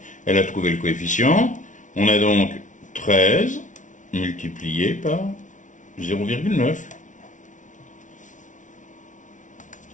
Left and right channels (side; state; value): right; late; 0.37 ms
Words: Elle a trouvé le coefficient. On a donc 13 multiplié par 0,9,